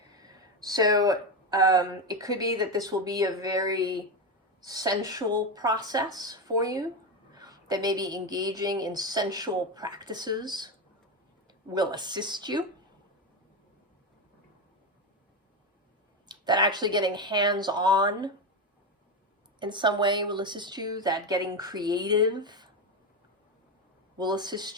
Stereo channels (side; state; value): both; normal; correlation 0.13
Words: So it could be that this will be a very sensual process for you, that maybe engaging in sensual practices will assist you, that actually getting hands-on in some way will assist you, that getting creative will